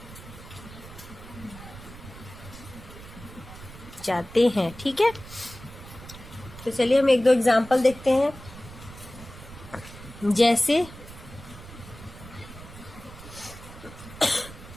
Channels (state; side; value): noise; right; rumble, 16 dB below the sound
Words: जाते हैं, ठीक है। तो चलिए हम 1-2 एग्जाम्पल देखते हैं। जैसे